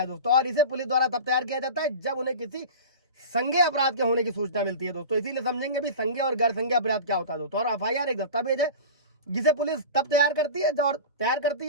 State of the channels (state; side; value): inverted; both; correlation -0.32